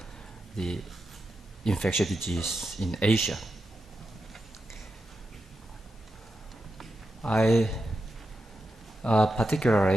the infectious disease in Asia. I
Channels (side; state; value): both; normal; correlation 0.88